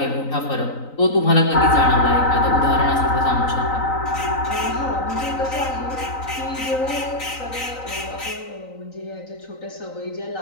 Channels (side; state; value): right; late; 3.9 ms